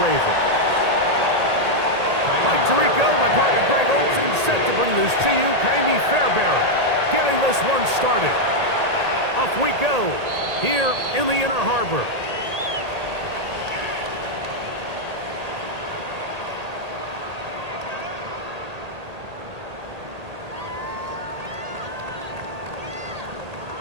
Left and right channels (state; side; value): late; left; 1.8 ms